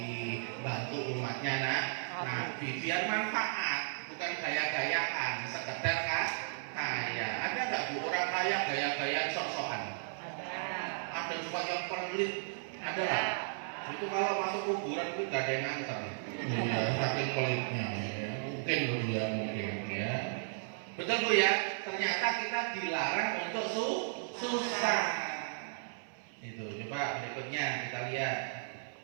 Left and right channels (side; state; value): left; silent; 54 dB below the other